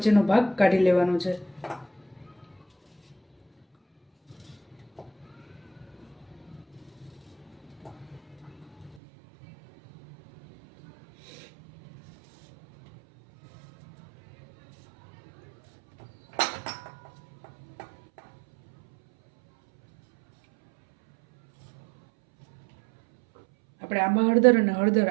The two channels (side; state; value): left; drops out; at 9.0 s